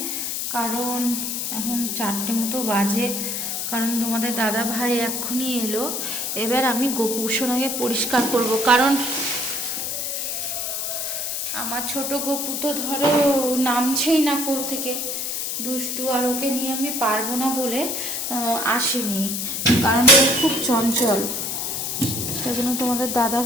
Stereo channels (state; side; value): noise; left; hiss, 2 dB below the sound